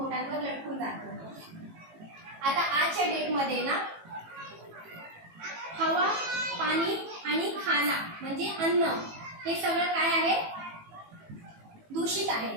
लटकून जातो. आता आजच्या डेटमध्ये ना हवा, पाणी आणि खाना म्हणजे अन्न, हे सगळं काय आहे? दूषित है।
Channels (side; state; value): left; late; 18 ms